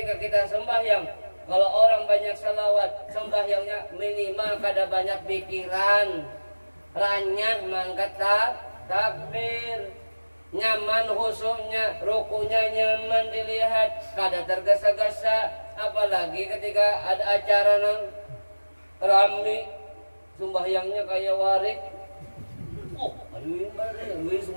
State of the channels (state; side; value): inverted; both; correlation -1.00